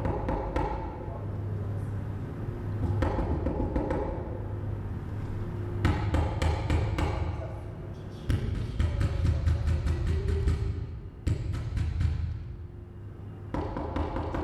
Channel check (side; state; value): both; identical; correlation 1.00